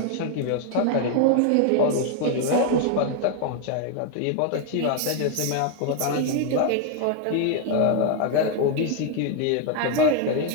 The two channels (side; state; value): both; different; correlation 0.00